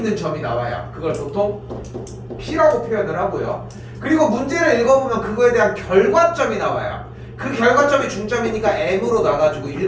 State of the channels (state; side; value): identical; both; correlation 1.00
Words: 점이 나와요. 그걸 보통 P라고 표현을 하고요. 그리고 문제를 읽어보면 그거에 대한 결과점이 나와요. 그 결과점이 중점이니까 M으로 나가지고